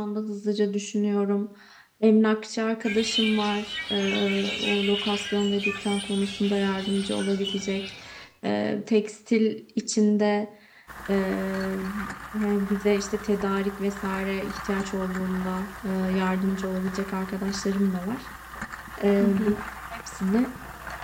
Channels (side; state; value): both; identical; correlation 1.00